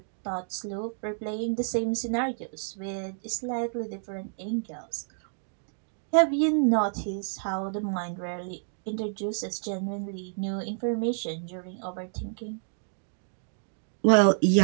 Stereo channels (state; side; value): silent; left; digital silence